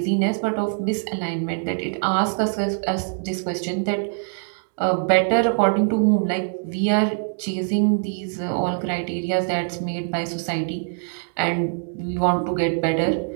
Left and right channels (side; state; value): left; silent; 63 dB below the other